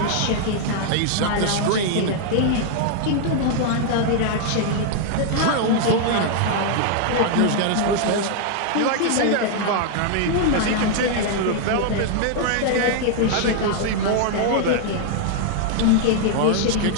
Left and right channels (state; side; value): different; both; correlation 0.00